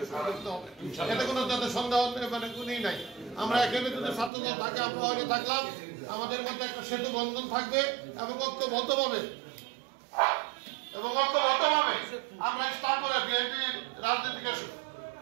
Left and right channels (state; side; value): drops out; left; at 4.3 s